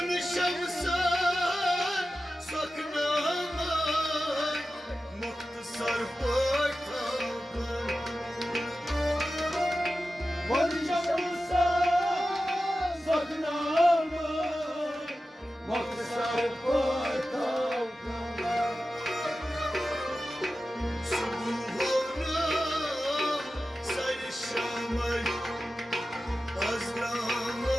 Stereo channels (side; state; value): both; normal; correlation 0.94